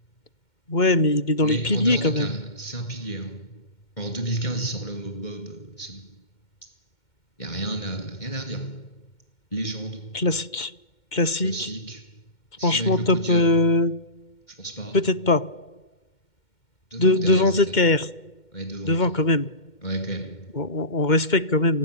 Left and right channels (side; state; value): right; late; 2.1 ms